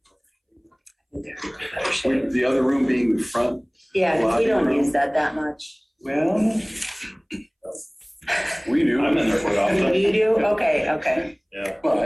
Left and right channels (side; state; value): both; identical; correlation 1.00